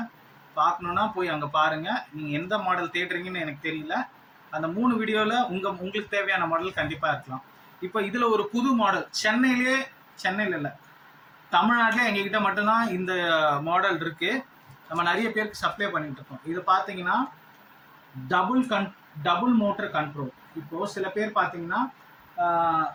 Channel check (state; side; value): identical; both; correlation 1.00